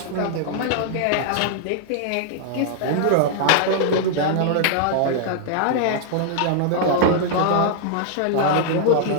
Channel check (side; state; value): both; different; correlation -0.01